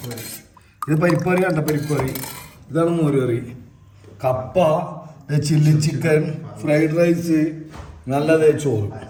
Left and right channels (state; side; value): identical; both; correlation 1.00